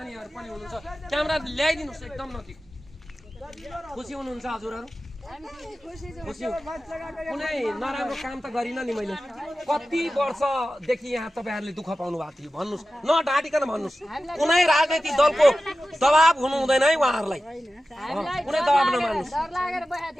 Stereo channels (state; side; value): normal; both; correlation 0.94